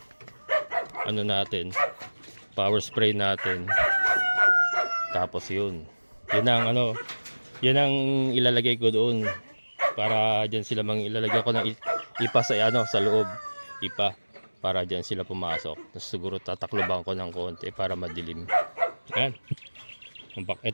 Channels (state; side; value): inverted; both; correlation -1.00